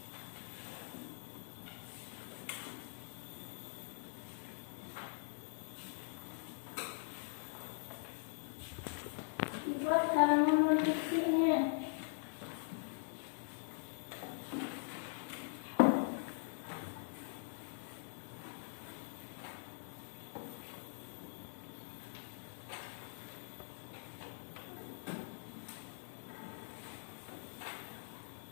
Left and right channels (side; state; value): right; silent; digital silence